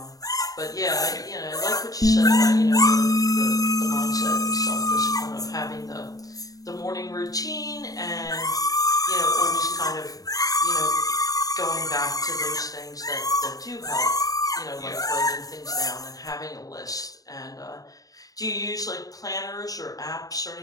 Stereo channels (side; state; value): right; late; 0.18 ms